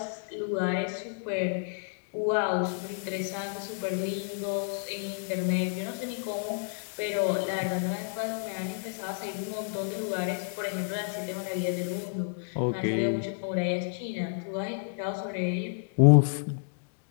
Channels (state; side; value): silent; right; digital silence